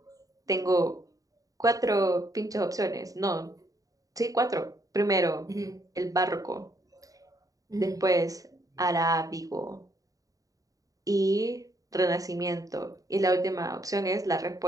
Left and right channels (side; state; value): left; late; 0.17 ms